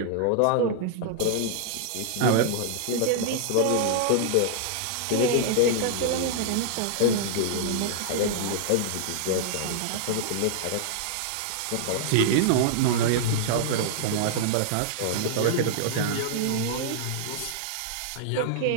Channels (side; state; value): both; different; correlation -0.01